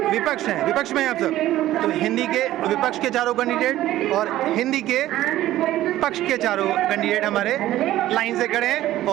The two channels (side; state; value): left; quieter; 14.4 dB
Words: विपक्ष हैं, विपक्ष में हैं आप सब। तो हिंदी के विपक्ष के चारों कैंडिडेट और हिंदी के पक्ष के चारों कैंडिडेट हमारे लाइन से खड़े हैं